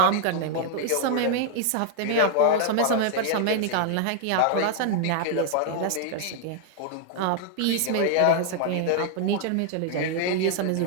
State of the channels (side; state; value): both; different; correlation 0.00